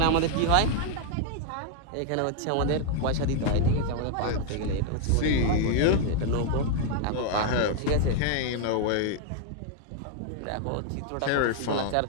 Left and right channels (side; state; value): both; different; correlation 0.00